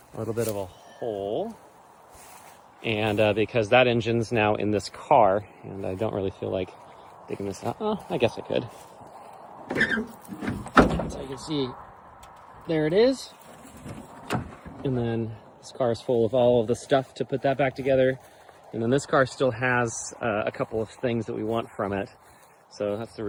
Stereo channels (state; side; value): identical; both; correlation 1.00